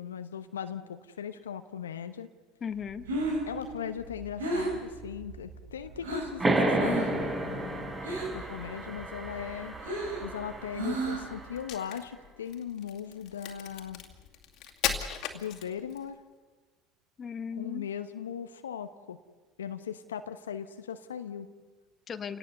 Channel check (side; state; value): both; normal; correlation 0.33